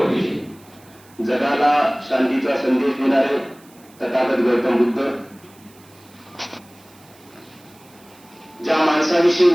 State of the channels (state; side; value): noise; right; hiss, 27 dB below the sound